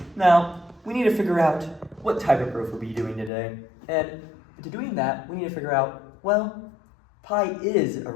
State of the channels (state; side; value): drops out; right; at 3.3 s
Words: Now, we need to figure out what type of proof we'll be doing today. And to doing that, we need to figure out, well, pi is